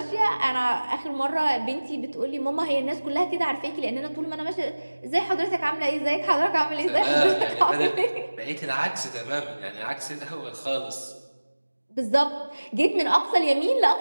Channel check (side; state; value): both; inverted; correlation -1.00